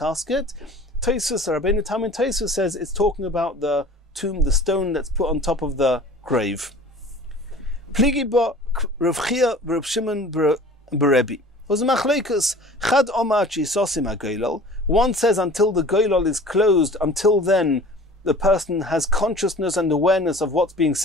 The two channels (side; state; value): both; normal; correlation 0.44